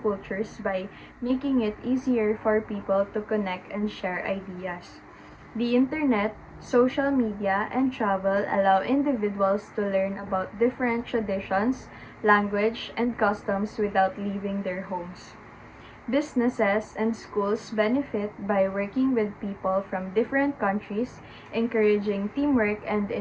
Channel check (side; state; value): both; identical; correlation 1.00